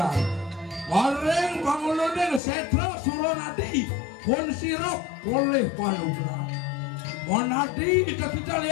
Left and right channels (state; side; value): drops out; right; at 2.4 s